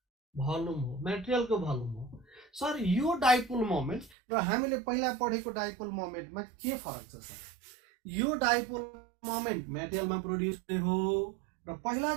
भल्युम हो, मेटेरियलको भल्युम हो। सर यो डाइपोल मोमेन्ट र हामीले पहिला पढेको डाइपोल मोमेन्टमा के फरक छ सर? यो डाइपोल मोमेन्ट मेटेरियलमा प्रोड्युस हो, र पहिला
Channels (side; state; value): left; drops out; at 4.1 s